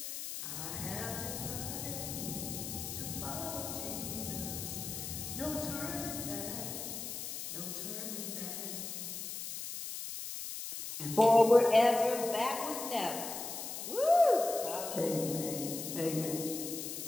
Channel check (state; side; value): noise; left; hiss, 6 dB below the sound